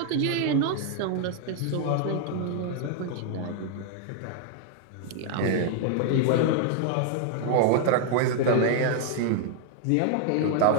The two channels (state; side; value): different; both; correlation 0.00